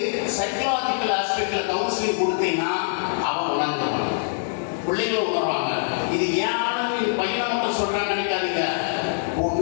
சைக்கலாஜிக்கல் ஆஸ்பெக்ட்ல கவுன்சிலிங் கொடுத்தீங்கன்னா அவன் உணர்ந்துருவான், பிள்ளைங்களும் உணர்வாங்க. இது ஏன் பையனை மட்டும் சொல்றான்னு நினைக்காதீங்க,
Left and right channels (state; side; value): silent; right; digital silence